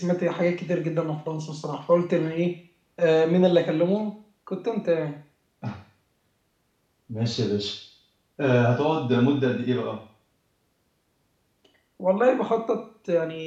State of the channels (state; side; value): identical; both; correlation 1.00